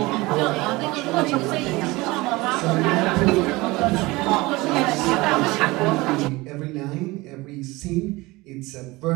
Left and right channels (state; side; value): quieter; left; 21.8 dB